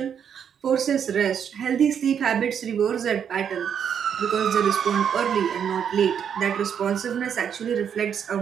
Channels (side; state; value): left; quieter; 8.1 dB